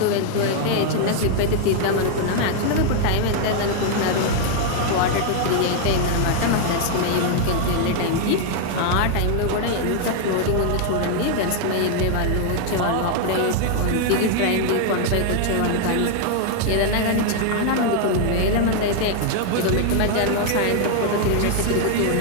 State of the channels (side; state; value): both; different; correlation 0.00